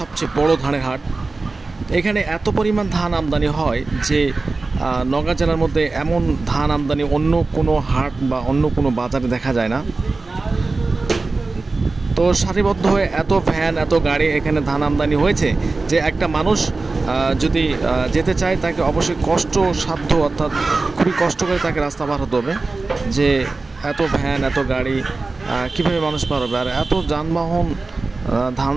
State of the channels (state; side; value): quieter; left; 3.6 dB